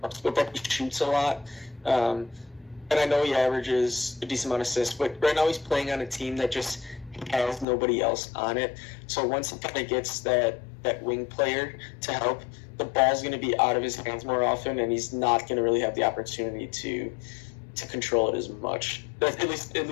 helps, but that he shoots a lot. And I know he averages a decent amount of assists, but right now he's playing on a team that just has nobody else on it. So once he kind of gets that wing player to help, the ball's going to be out of his hands more often, and he's not going to really have the opportunity to control it as much. At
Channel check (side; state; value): right; drops out; at 7.7 s